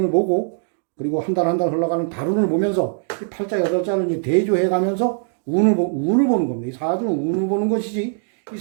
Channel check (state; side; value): silent; left; 65 dB below the other